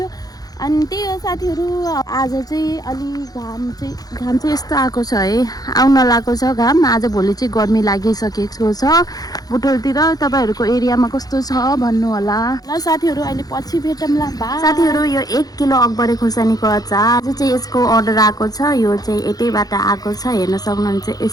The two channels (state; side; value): late; right; 0.18 ms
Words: अनि त्यही हो साथीहरू। आज चाहिँ अलि घाम चाहिँ यस्तो आएको छ है, आउन लागेको छ घाम। आज भोलि चाहिँ गर्मी लागिसकेको छ बुटोलतिर। तपाईँहरूको एरियामा कस्तो छ भन्नु होला ल साथीहरू। अहिले पछि भेटौँला, बाइ। साथीहरू यो 1 किलो अकबरे खुर्सानीको अचार आज चाहिँ यसको अर्डर आएको छ। यो चाहिँ यतैबाट आएको छ, हेर्न सक्नुहुन्छ।